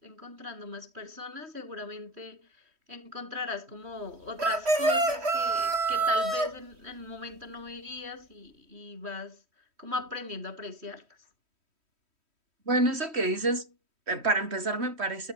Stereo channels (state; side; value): late; left; 3.1 ms